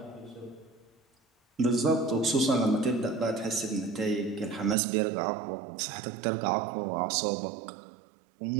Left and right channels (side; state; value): left; drops out; at 4.8 s